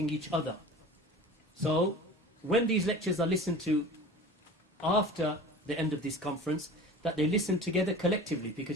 each other. So when these lectures are listened to after the end of this conference, that they listen together collectively,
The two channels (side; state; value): both; normal; correlation 0.39